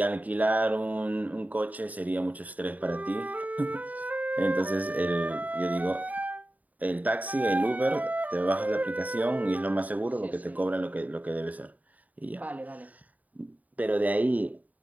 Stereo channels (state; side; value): late; left; 0.075 ms